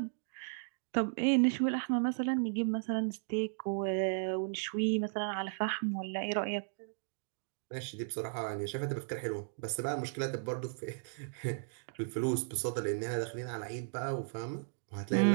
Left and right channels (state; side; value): silent; left; digital silence